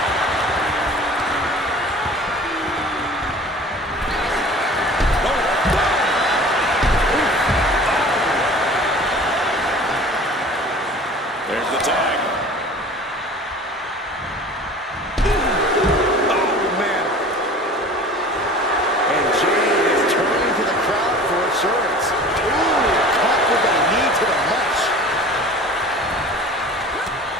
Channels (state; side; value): normal; both; correlation 0.43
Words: There's the tag. Oh, man. And Jade is turning to the crowd for assurance. Ooh, caught with a knee to the mush.